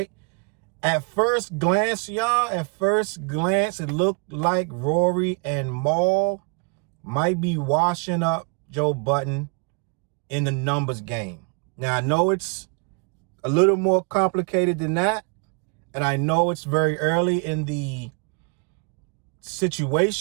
At first glance, y'all, it looked like Rory and Mal might be washing up Joe Budden in the numbers game. Now, I know it's a little more complicated than that, and I know it's very early in the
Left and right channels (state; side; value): quieter; left; 35.2 dB